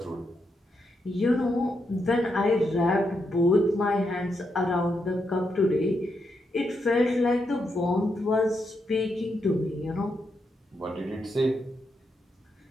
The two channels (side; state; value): both; normal; correlation 0.82